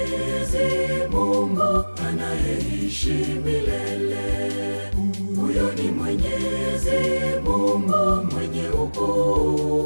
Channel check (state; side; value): inverted; both; correlation -1.00